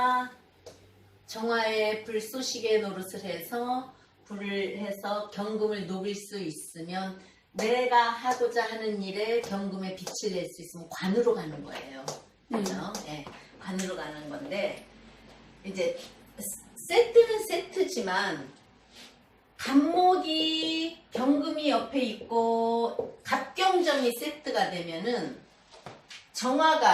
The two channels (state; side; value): identical; both; correlation 1.00